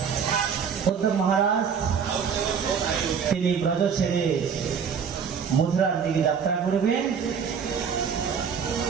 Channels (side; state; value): left; quieter; 6.8 dB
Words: উদ্ধব মহারাজ তিনি ব্রজ ছেড়ে মথুরার দিকে যাত্রা করবেন,